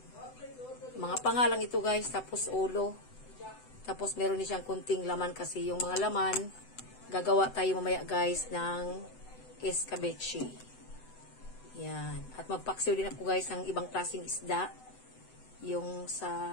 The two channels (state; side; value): late; right; 7.9 ms